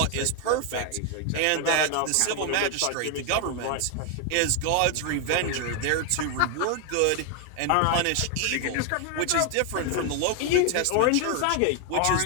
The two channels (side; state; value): both; different; correlation 0.00